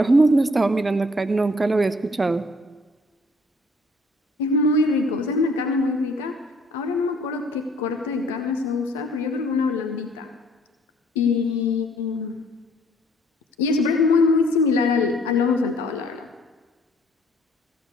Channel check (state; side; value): normal; both; correlation 0.60